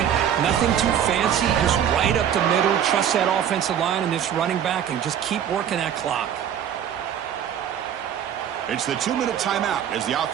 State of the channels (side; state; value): left; quieter; 9.4 dB